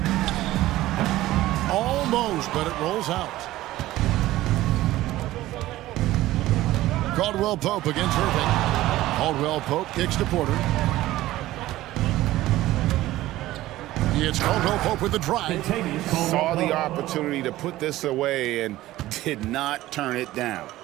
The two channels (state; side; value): quieter; left; 16.0 dB